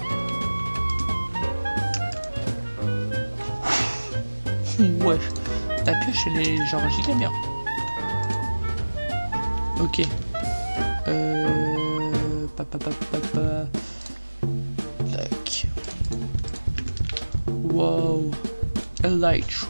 Wesh. Ta pioche, elle est genre giga bien. Ok. Tac. Wow.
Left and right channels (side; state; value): both; inverted; correlation -1.00